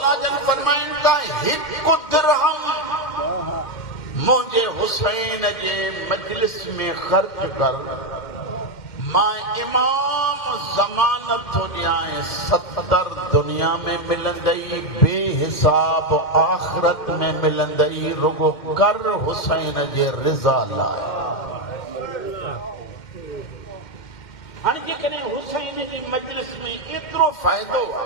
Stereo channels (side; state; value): right; late; 2.1 ms